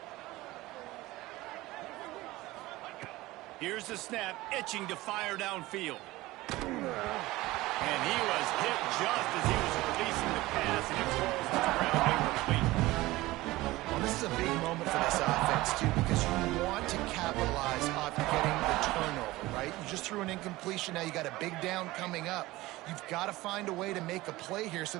Here's the snap, itching to fire downfield. And he was hit just as he was releasing the pass, and it falls to the ground incomplete. Well, this is a big moment for this offense, too, because you want to capitalize off getting the turnover, right? You just threw an incompletion. Now you got a big down coming up. You've got to find a way to make a play here so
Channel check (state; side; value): quieter; left; 18.8 dB